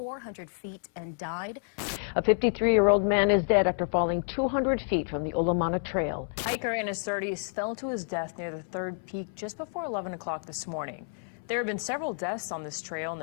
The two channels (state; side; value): silent; right; 58 dB below the other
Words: feet and died. A 53-year-old man is dead after falling 200 feet from the Olamana Trail. Hiker in his 30s fell to his death near the third peak just before 11 o'clock this morning. There have been several deaths on this trail in